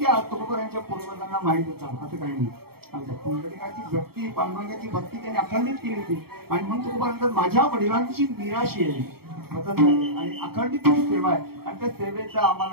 तुकोबारांच्या पूर्वजांना माहित होता असं काही नाही आमच्या पुंडलिकाची भक्ती पांडुरंगाची भक्ती त्यांनी अखंडित केली होती आणि म्हणून तुकोबारांतर माझ्या वडिलांची निराशी आहे आणि अखंडित सेवा आहे आणि त्या सेवेचा आम्हाला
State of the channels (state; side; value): late; left; 0.95 ms